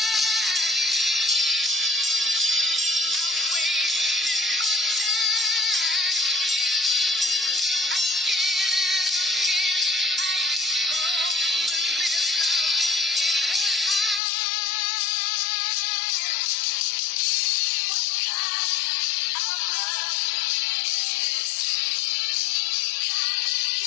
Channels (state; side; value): drops out; right; at 14.2 s